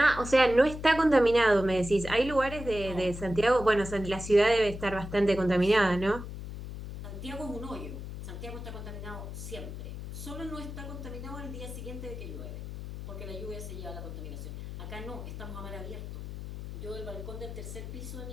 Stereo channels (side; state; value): left; noise; hum, 9 dB below the sound